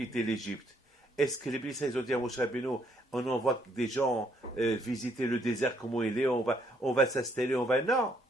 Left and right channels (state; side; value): normal; both; correlation 0.69